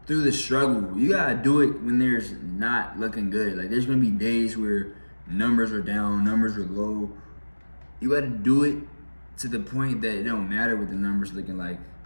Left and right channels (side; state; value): both; inverted; correlation -1.00